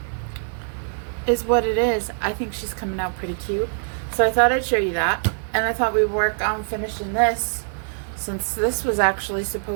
is what it is. I think she's coming out pretty cute. So I thought I'd show you that. And I thought we'd work on finishing this, since this was actually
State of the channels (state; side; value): silent; left; 63 dB below the other